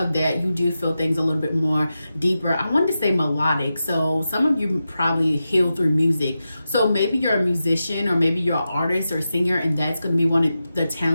that, you do feel things a little bit more deeper. I wanted to say melodic. So some of you probably heal through music. So maybe you're a musician, or maybe you're an artist or a singer, and that's going to be one of the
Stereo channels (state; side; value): inverted; both; correlation -0.91